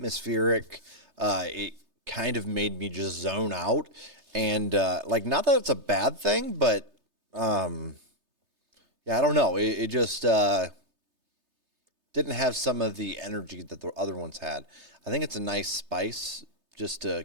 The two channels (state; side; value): late; left; 3.3 ms